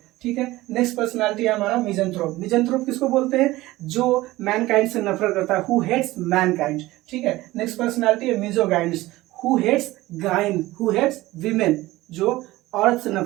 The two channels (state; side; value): quieter; left; 18.1 dB